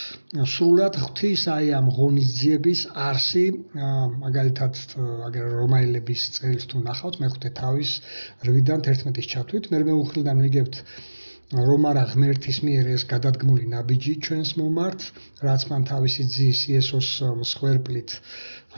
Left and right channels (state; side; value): inverted; both; correlation -1.00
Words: სრულად ღვთის აი ამ ღონისძიების არსი, მაგალითად აგერ რომაელების წერილს თუ ნახავთ მე-5 თავის 8-დან 11-ის ჩათვლით, მე მეუხლიდან ვიგებთ რომ არა ღმერთის მიერ ეს გადადგმული ნაბიჯი ჩვენს მომართ, რაც მან თავისი ძის იესოს მსხვერპლით,